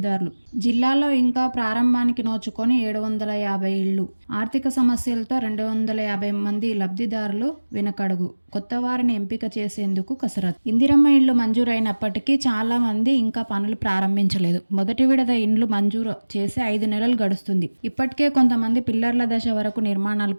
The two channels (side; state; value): both; inverted; correlation -1.00